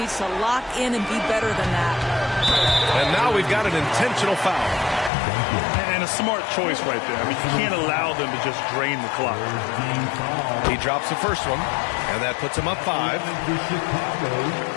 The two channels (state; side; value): drops out; right; at 5.1 s